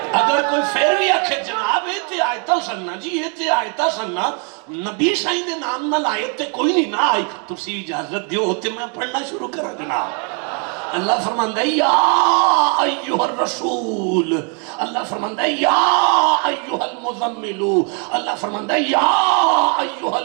جی یہ تے آیتہ سننا نبی سائیں دے نام نہ لائے تے کوئی نہیں نہ آئی تسی اجازت دیو ہوتے میں پڑھنا شروع کرا جناب اللہ فرماندہ ہے یا ایوہ الرسول اللہ فرماندہ ہے یا ایوہ المزملو اللہ فرماندہ ہے یا ایوہ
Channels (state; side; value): quieter; left; 39.0 dB